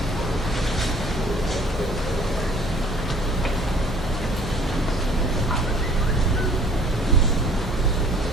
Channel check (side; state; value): both; normal; correlation 0.55